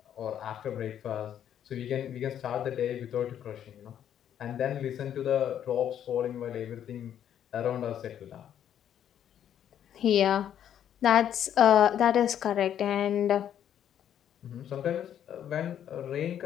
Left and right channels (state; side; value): quieter; right; 9.9 dB